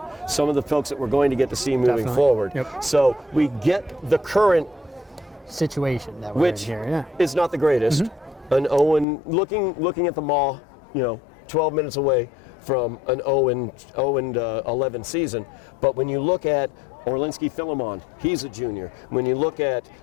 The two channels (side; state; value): right; drops out; at 9.1 s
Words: some of the folks that we're going to get to see moving forward. Yep. So we get the current situation that which is not the greatest. An Owen looking at the Maw, 12 minutes away from an 0-11 season. But when you look at Orlinski Philemon, he's a junior. When you look at